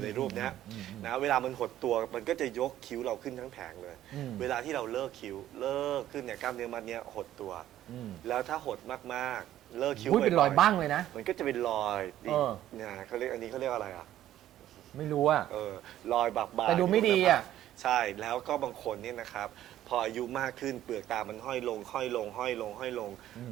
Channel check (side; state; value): left; quieter; 12.7 dB